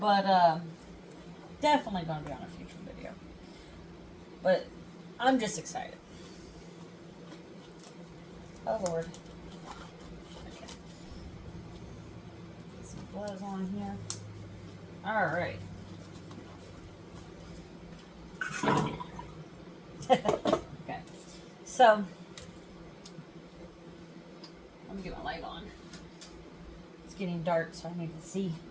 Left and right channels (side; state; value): both; identical; correlation 1.00